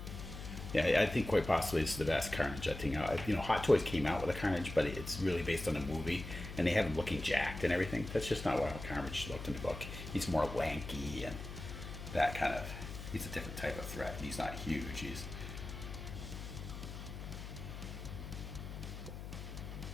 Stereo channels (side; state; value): left; noise; hum, 9 dB below the sound